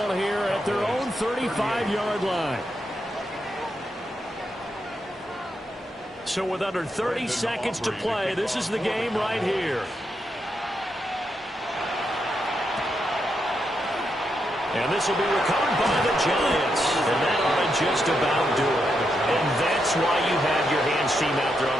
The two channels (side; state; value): both; normal; correlation 0.83